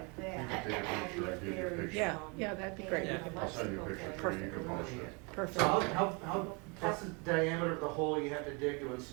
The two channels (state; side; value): quieter; left; 31.3 dB